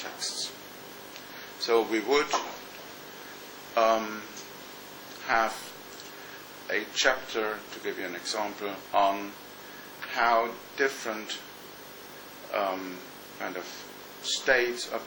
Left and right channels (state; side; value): identical; both; correlation 1.00